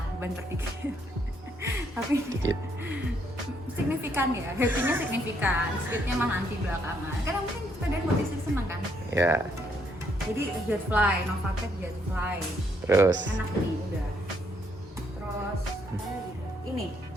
banter dikit. Tapi Dikit. signifikan ya, happy-nya signifikan, speed-nya mah nanti belakangan. Karena mungkin sepeda buat istri seneng kan. Ya. Jadi Jetfly, Novatec Jetfly. Terus Enak nih udah. Terus ini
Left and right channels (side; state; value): both; normal; correlation 0.72